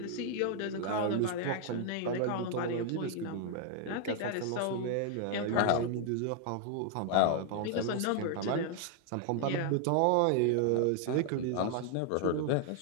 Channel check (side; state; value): both; different; correlation 0.00